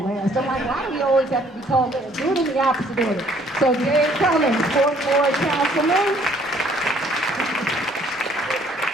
last. I'm like, why do we always have to be called last? Do it in the opposite order. So Dave Cummings, 4th Ward Councilman.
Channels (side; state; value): both; normal; correlation 0.61